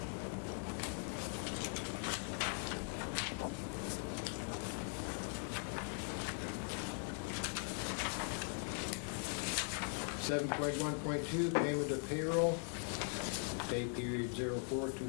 Seven point 1.2, payment of payroll, pay period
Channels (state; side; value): silent; right; 51 dB below the other